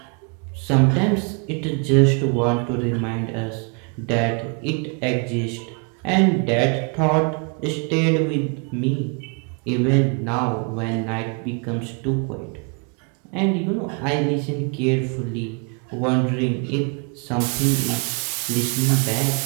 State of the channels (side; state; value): left; quieter; 35.8 dB